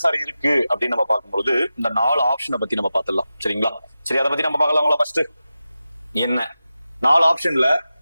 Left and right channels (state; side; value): inverted; both; correlation -0.93